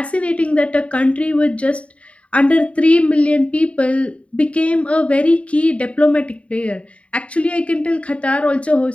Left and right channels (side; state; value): right; late; 0.063 ms